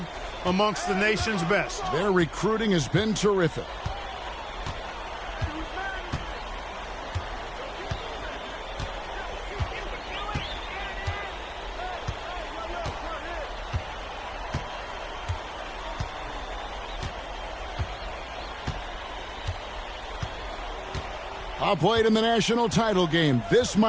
amongst the nation's best. Their recruiting has been terrific. Played in the national title game. This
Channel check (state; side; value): identical; both; correlation 1.00